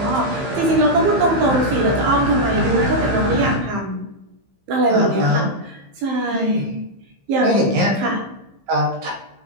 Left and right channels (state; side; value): late; left; 15 ms